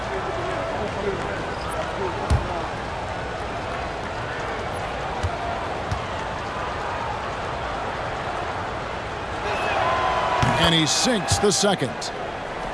And he sinks the second.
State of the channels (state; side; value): identical; both; correlation 1.00